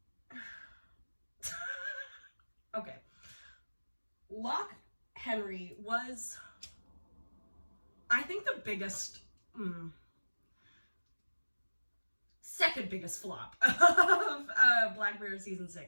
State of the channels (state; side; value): inverted; both; correlation -1.00